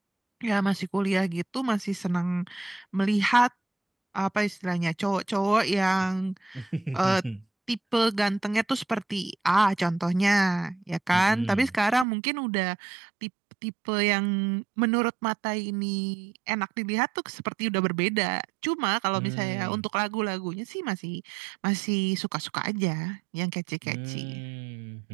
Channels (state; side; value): drops out; left; at 12.1 s